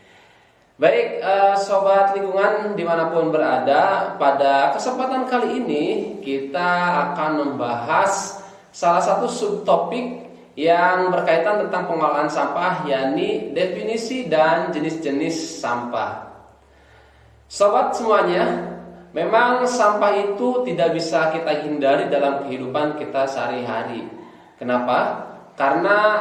Baik, sobat lingkungan dimanapun berada, pada kesempatan kali ini kita akan membahas salah satu subtopik yang berkaitan tentang pengelolaan sampah, yakni definisi dan jenis-jenis sampah. Sobat semuanya, memang sampah itu tidak bisa kita hindari dalam kehidupan kita sehari-hari. Kenapa?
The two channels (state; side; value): identical; both; correlation 1.00